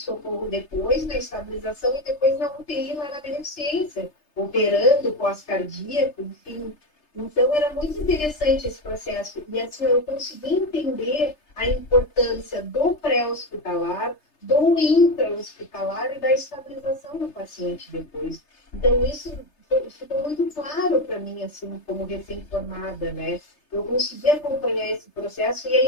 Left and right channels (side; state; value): right; late; 3.3 ms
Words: depois, na estabilização, e depois na UTI, lá na beneficência, operando pós-cardíaco, enfim. Então, era muito interessante esse processo. E assim, eu consegui entender a importância do pré-hospitalar, do intra-hospitalar e da estabilização do paciente depois. Então, isso ficou muito claro para mim, assim, como recém-formada, né? Eu consegui acompanhar esse processo e